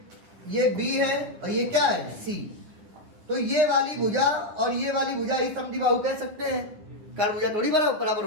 B है और ये क्या है C। तो ये वाली भुजा और ये वाली भुजा ही समद्विबाहु कह सकते हैं, कारण भुजा थोड़ी बराबर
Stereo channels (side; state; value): left; late; 10 ms